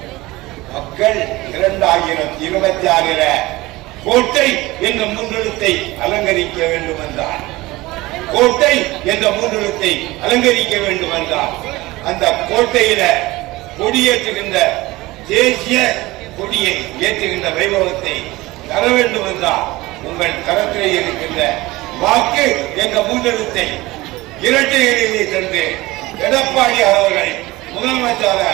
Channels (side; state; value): left; quieter; 19.9 dB